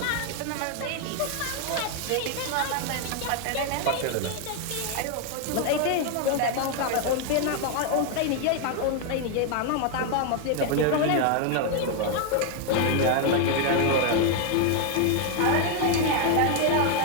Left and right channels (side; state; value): both; different; correlation 0.01